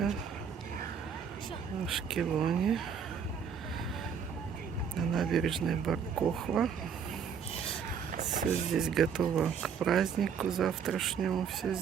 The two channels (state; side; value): quieter; left; 7.0 dB